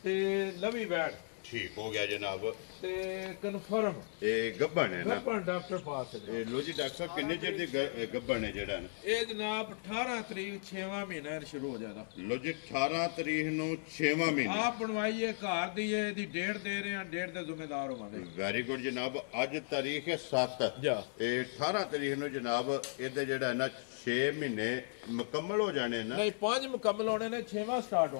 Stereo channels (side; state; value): right; silent; digital silence